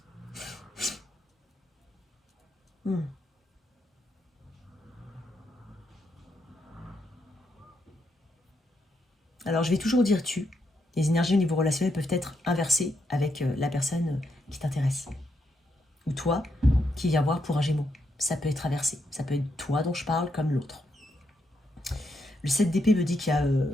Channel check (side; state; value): both; normal; correlation 0.80